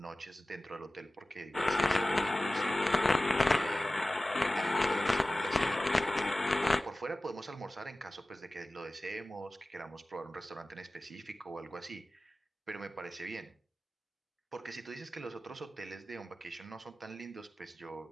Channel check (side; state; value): both; normal; correlation 0.96